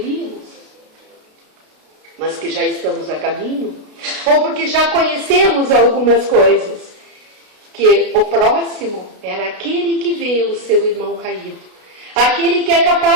mas que já estamos a caminho, ou porque já conhecemos algumas coisas, que o próximo era aquele que vê o seu irmão caído, aquele que é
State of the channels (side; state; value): left; late; 32 ms